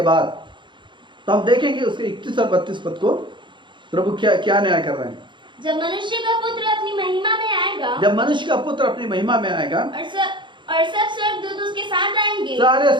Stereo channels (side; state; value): left; late; 0.23 ms